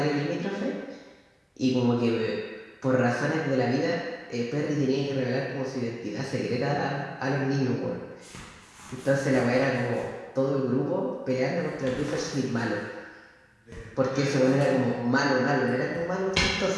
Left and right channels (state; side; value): identical; both; correlation 1.00